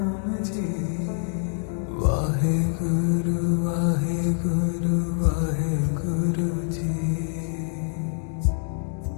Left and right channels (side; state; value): right; silent; digital silence